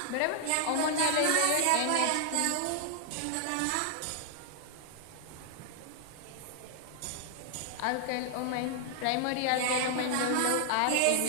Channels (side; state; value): both; different; correlation 0.00